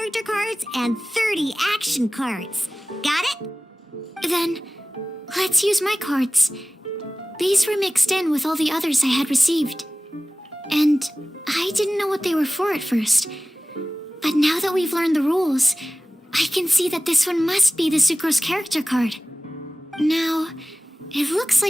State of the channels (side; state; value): both; normal; correlation 0.97